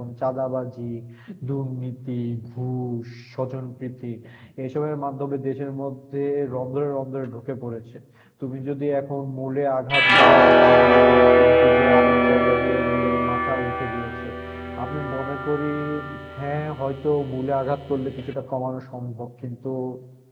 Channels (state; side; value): identical; both; correlation 1.00